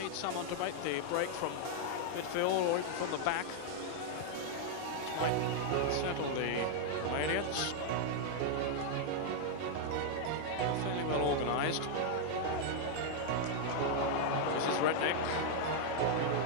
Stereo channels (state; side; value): different; both; correlation -0.01